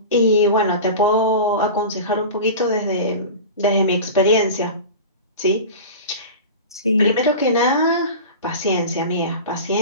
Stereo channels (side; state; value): both; inverted; correlation -0.31